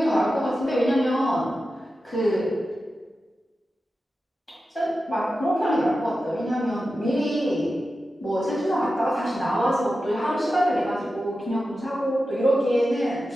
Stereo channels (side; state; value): both; normal; correlation 0.92